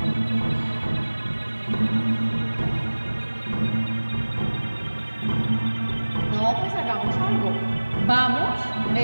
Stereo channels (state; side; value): inverted; both; correlation -1.00